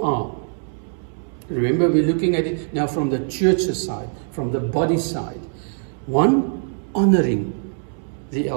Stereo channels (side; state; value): left; silent; 62 dB below the other